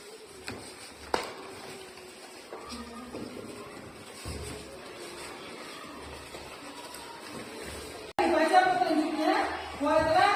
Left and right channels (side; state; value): both; identical; correlation 1.00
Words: Dibaca petunjuknya, buatlah